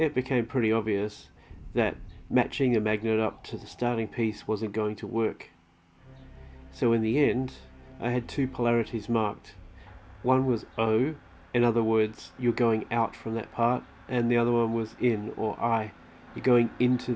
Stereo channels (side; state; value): both; identical; correlation 1.00